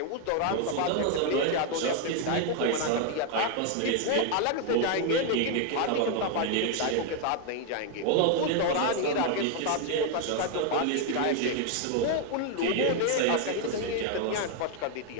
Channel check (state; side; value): different; both; correlation 0.01